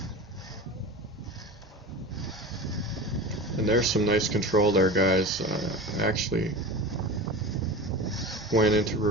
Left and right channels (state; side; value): normal; both; correlation 0.31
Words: And there's some nice control there, guys. I actually went into